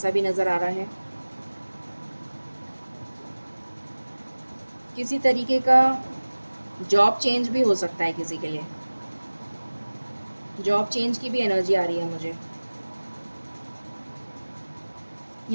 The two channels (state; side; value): inverted; both; correlation -1.00